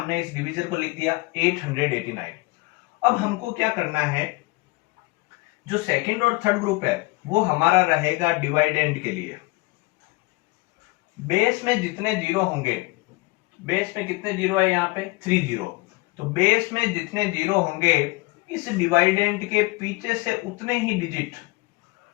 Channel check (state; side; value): quieter; right; 24.3 dB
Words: इस डिवीजर को लिख दिया 889। अब हमको क्या करना है, जो सेकंड और थर्ड ग्रुप है वो हमारा रहेगा डिवाइडेंड के लिए। बेस में जितने जीरो होंगे, बेस में कितने जीरो है यहाँ पे 3 जीरो, तो बेस में जितने जीरो होंगे इस डिवाइडेंड के पीछे से उतने ही डिजिट,